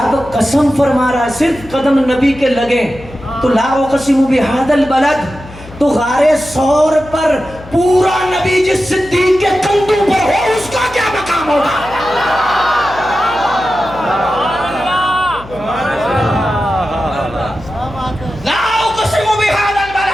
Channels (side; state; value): left; noise; hum, 17 dB below the sound